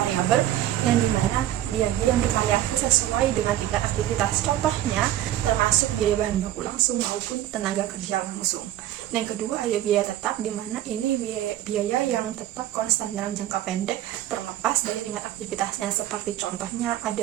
yang dimana biaya yang divariasi sesuai dengan tingkat aktivitas. Contohnya termasuk biaya bahan baku langsung maupun tenaga kerja langsung. Yang kedua ada biaya tetap, dimana ini biaya yang tetap konstan dalam jangka pendek terlepas dari tingkat aktivitasnya. Seperti contohnya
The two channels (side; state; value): left; quieter; 13.0 dB